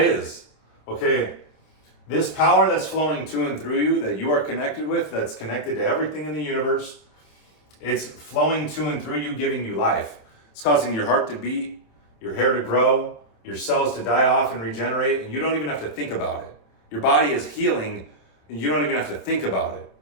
Okay, this power that's flowing to and through you, that you are connected with, that's connected to everything in the universe, it's flowing to and through you, giving you life. It's causing your heart to beat, your hair to grow, your cells to die off and regenerate, and you don't even have to think about it. Your body is healing, and you don't even have to think about it.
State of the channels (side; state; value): right; late; 27 ms